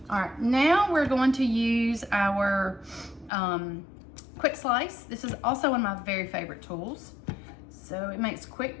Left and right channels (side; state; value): right; drops out; at 3.3 s